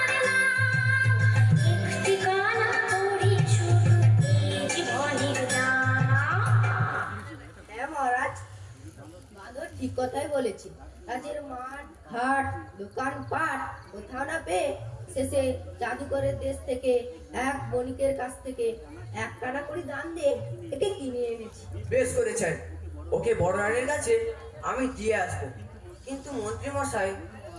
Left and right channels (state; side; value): identical; both; correlation 1.00